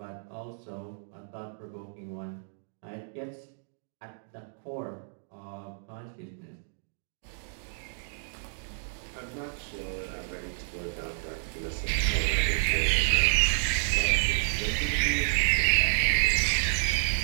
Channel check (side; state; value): left; silent; digital silence